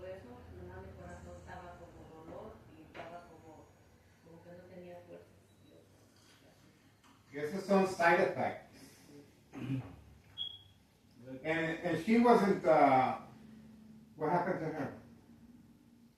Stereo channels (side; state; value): both; identical; correlation 1.00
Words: eso, nomás mi corazón estaba como dolor y estaba como que no tenía fuerza. Y esos son side effects. And she wasn't, what happened to her?